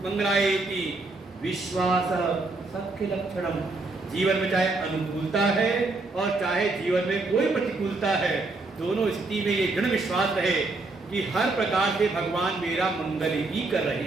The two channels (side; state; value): left; quieter; 3.4 dB